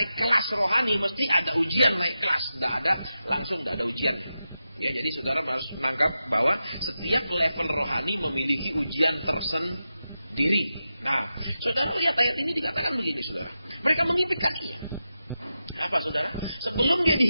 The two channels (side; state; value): both; inverted; correlation -0.90